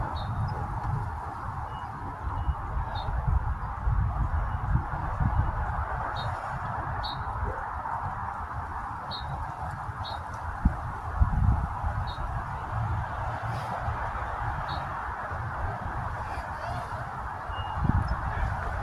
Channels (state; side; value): identical; both; correlation 1.00